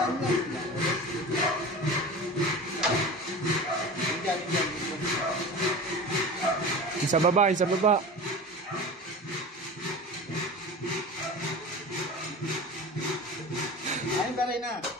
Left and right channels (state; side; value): normal; both; correlation 0.33